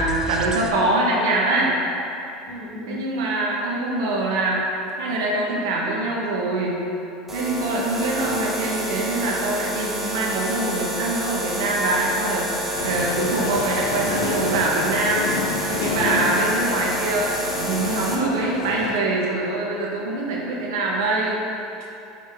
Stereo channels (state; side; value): normal; both; correlation 0.20